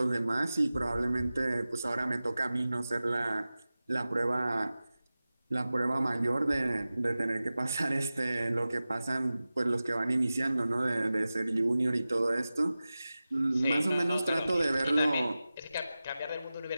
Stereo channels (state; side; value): inverted; both; correlation -0.96